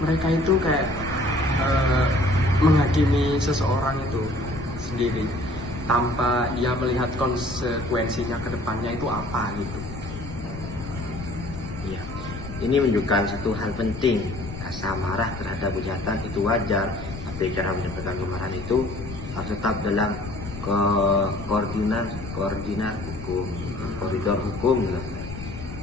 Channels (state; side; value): noise; left; rumble, 10 dB below the sound